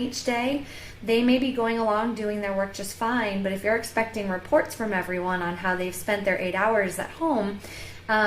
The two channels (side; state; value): both; identical; correlation 1.00